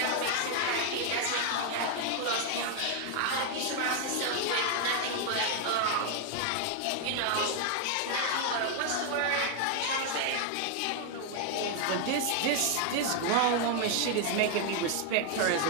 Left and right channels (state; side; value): different; both; correlation 0.00